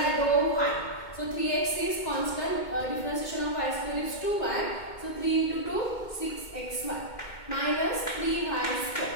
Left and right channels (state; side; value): late; right; 2.2 ms